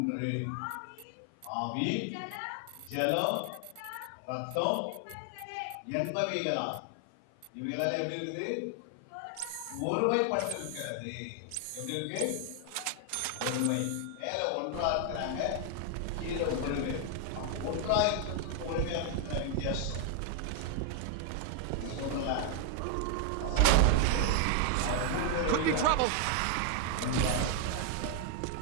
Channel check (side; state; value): both; different; correlation 0.00